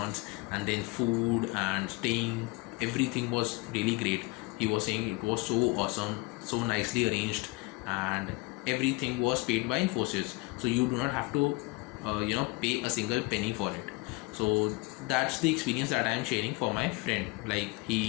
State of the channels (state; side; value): quieter; right; 24.8 dB